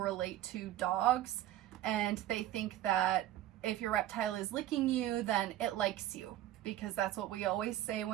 to dogs, and they think that if your reptile is licking you, then it likes you, because that's what we always say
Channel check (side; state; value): left; quieter; 13.6 dB